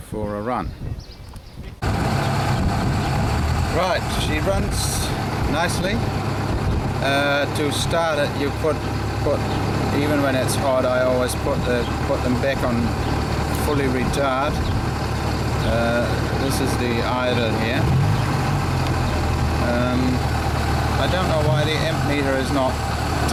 a run. Right, she runs nicely. To start it, you put even when it's hot, I always put them back on fully retard. This is the idle here. I don't know why the amp meter is not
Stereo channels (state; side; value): identical; both; correlation 1.00